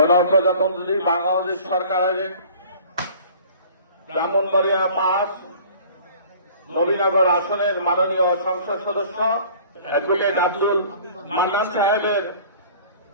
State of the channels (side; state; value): both; inverted; correlation -0.48